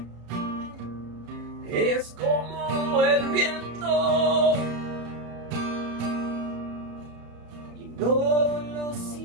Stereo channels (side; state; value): left; late; 34 ms